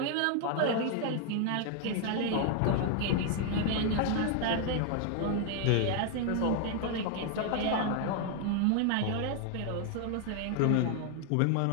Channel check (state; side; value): different; both; correlation 0.00